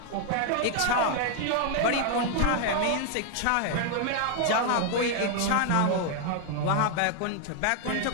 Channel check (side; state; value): both; different; correlation 0.00